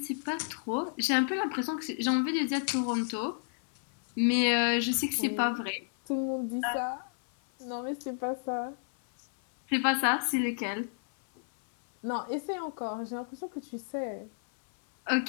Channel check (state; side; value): silent; right; 57 dB below the other